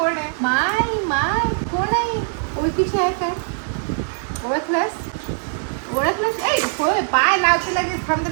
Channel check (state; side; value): silent; left; 57 dB below the other